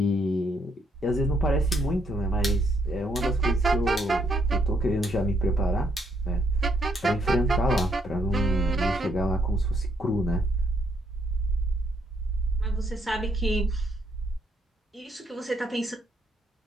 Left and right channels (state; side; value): normal; both; correlation 0.73